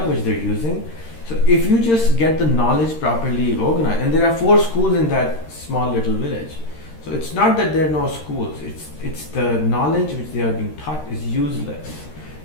which they're using. So if you just get the knowledge properly organized, and there are 4 schools in that small little village. So it's not that there are no schools, it's the knowledge which they are being taught is useless.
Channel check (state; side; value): late; right; 13 ms